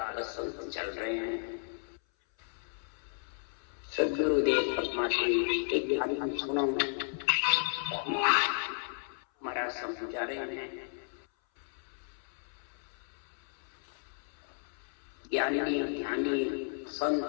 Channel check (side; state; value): right; silent; 55 dB below the other